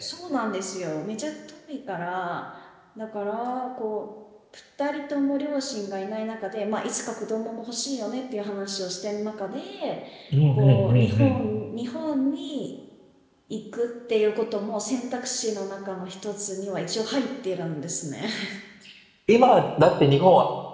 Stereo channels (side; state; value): both; identical; correlation 1.00